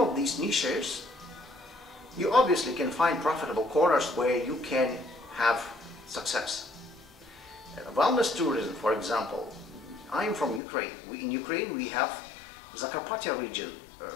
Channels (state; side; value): drops out; right; at 10.6 s